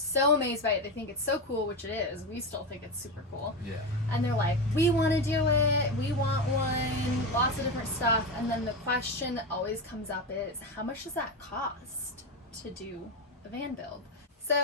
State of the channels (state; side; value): normal; both; correlation 0.16